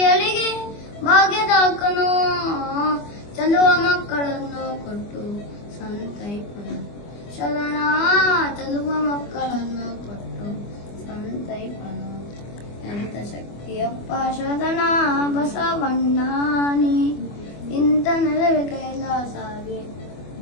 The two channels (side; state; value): right; late; 25 ms